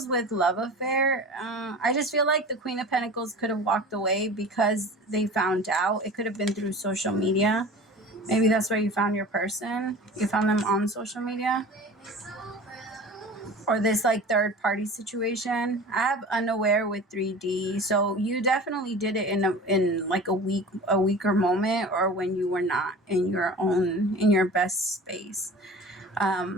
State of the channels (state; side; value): normal; both; correlation 0.38